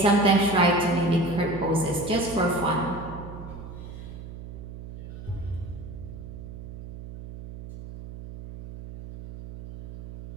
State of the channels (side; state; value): right; noise; hum, 12 dB below the sound